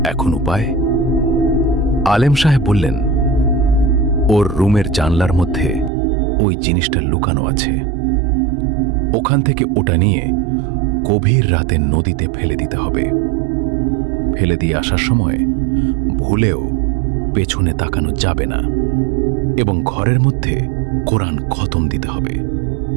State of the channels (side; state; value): left; drops out; at 5.9 s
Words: এখন উপায়? আলেম সাহেব বললেন, ওর রুমের জানলার মধ্যে ওই জিনিসটা লুকানো আছে, ওখান থেকে ওটা নিয়ে গভীর রাতে নদীতে ফেলে দিতে হবে। ফেলে দিয়ে আসার সময় ভুলেও পেছনে তাকানো যাবে না এবং ঘরের মধ্যে কোরআন খতম দিতে হবে,